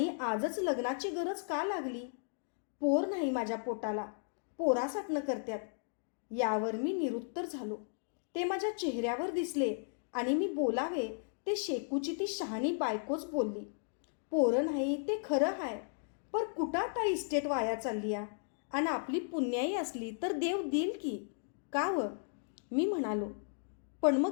आजच लग्नाची गरज का लागली? पोर नाही माझ्या पोटाला, पोरासाठनं करत्यात. यावर मी निरुत्तर झालो. ते माझ्या चेहऱ्यावर दिसले आणि मी बोलावे ते शेकूची ती शहाणी बायकोच बोलली. पोरं नाही ते खरं हाय, पर कुठं आता इस्टेट वाया चालली या? आणि आपली पुण्याई असली तर देव देईल की, का व? मी म्हणालो, पण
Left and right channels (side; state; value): right; silent; digital silence